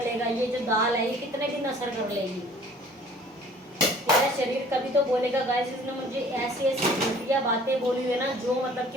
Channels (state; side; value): normal; both; correlation 0.52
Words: लेगा, ये जो दाल है ये कितने दिन असर कर लेगी। मेरा शरीर कभी तो बोलेगा गाइस इसने मुझे ऐसी ऐसी घटिया बातें बोली हुई है ना, जो मतलब कि